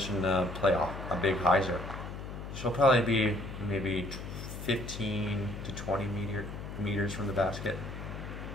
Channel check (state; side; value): noise; left; hum, 9 dB below the sound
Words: to play a big hyzer. She'll probably be maybe 15 to 20 meters from the basket.